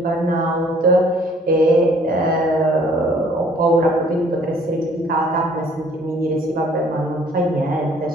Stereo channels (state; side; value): normal; both; correlation 0.58